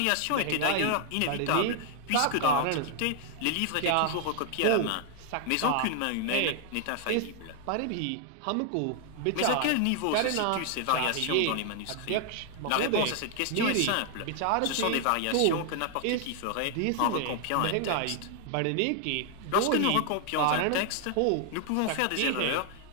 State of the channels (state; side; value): different; both; correlation 0.00